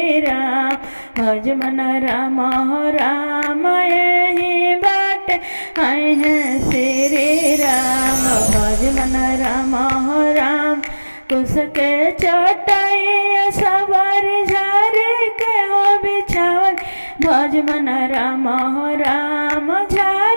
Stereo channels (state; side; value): inverted; both; correlation -1.00